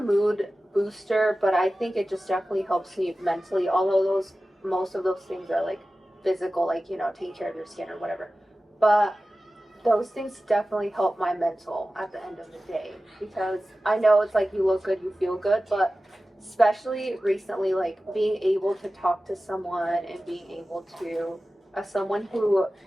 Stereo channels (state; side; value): normal; both; correlation 0.95